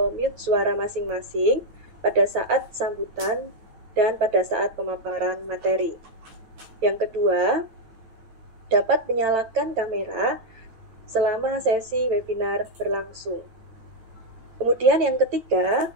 mute suara masing-masing pada saat sambutan dan pada saat pemaparan materi. Yang kedua, dapat menyalakan kamera selama sesi webinar berlangsung. Kemudian yang ketiga,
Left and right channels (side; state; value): left; late; 9.0 ms